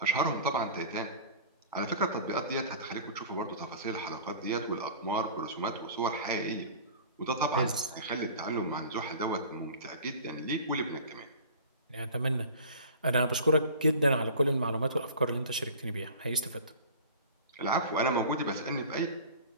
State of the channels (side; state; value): both; inverted; correlation -0.41